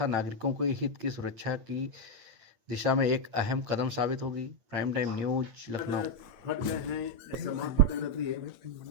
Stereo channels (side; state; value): left; late; 8.9 ms